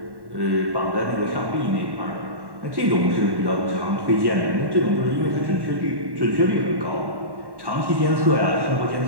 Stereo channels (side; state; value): left; late; 1.1 ms